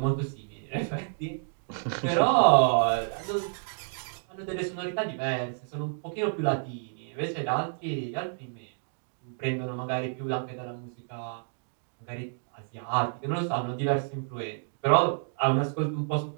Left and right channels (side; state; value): left; silent; digital silence